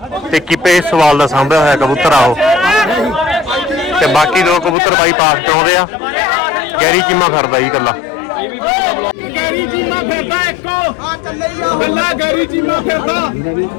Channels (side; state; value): right; drops out; at 4.8 s